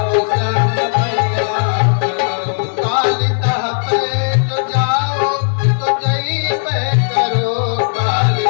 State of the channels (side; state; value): right; silent; digital silence